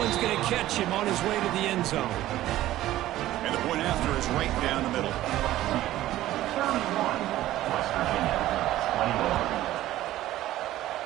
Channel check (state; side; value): quieter; left; 14.6 dB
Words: going to catch him on his way to the end zone. And the point after is right down the middle.